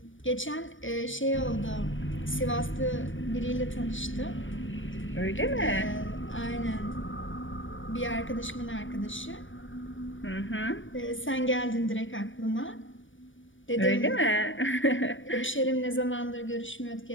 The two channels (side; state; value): right; late; 0.56 ms